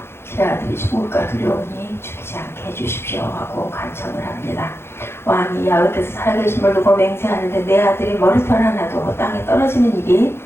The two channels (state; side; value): late; right; 0.12 ms